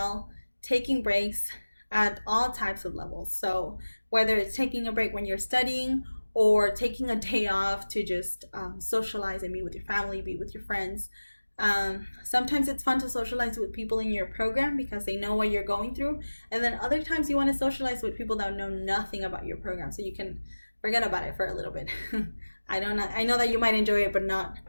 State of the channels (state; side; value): inverted; both; correlation -1.00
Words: taking breaks at all types of levels. So whether it's taking a break when you're studying or taking a day off to just socialize and be with your family, be with your friends. Sometimes it's fun to socialize with people in your program because they know what you're going through. And then other times you want to socialize with people that know nothing about your program so you can forget about it for a little bit. I know that you might enjoy it, but not